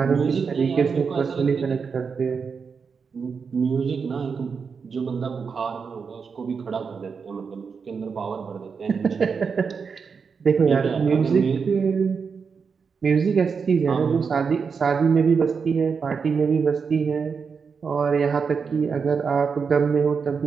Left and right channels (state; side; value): quieter; left; 5.7 dB